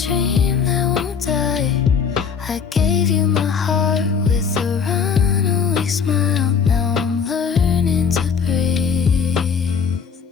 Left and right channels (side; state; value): right; quieter; 6.4 dB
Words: that won't die. I gave you my heart with a runaway smile. Now I'm learning to breathe,